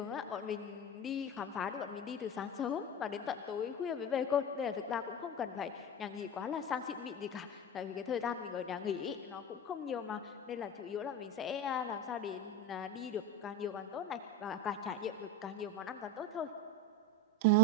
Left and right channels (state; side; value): normal; both; correlation 0.24